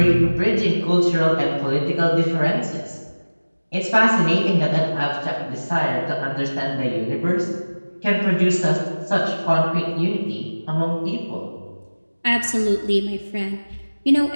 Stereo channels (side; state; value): both; inverted; correlation -1.00